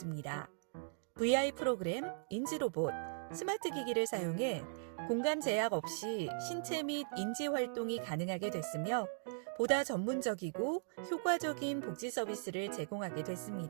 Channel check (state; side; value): silent; left; digital silence